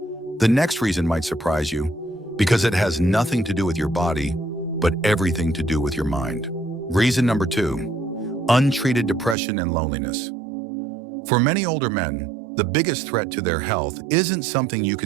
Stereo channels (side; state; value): left; drops out; at 9.3 s